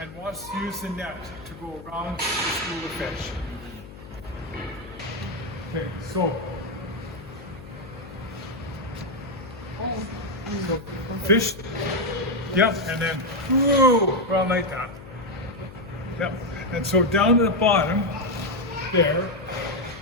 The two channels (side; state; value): left; noise; hum, 16 dB below the sound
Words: wants to use the net to go around the school of fish. Okay, so fish, yep, and then whoa, around like that. Yep, and so down to the bottom there,